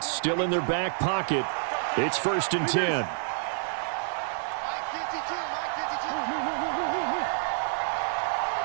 still in their back pocket. It's 1st and 10.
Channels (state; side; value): silent; left; digital silence